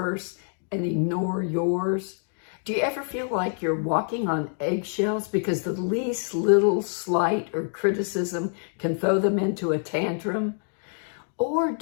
and ignore yours? Do you ever feel like you're walking on eggshells because the least little slight or criticism can throw them into a tantrum? Or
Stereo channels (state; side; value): silent; right; 59 dB below the other